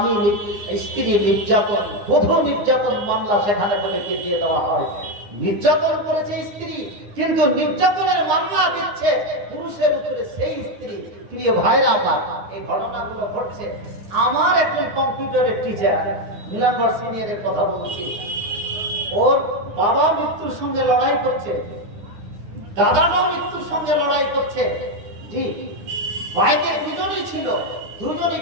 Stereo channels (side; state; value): left; late; 9.7 ms